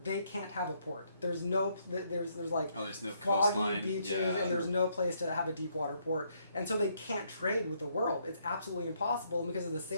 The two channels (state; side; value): inverted; both; correlation -0.72